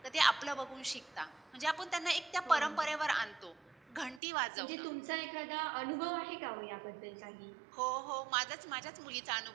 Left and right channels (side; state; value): left; drops out; at 4.2 s